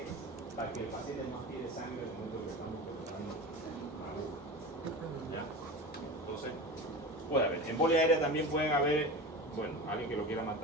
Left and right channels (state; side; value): normal; both; correlation 0.30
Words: Para que el paciente no tire sangre en el momento que estamos colocando la aguja. ¿Ya? Entonces, puede haber. Embolia aérea también pueden haber, bueno, alguien que lo quiera